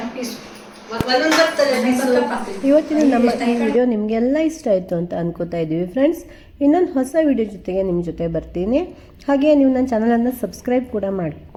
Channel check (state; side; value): identical; both; correlation 1.00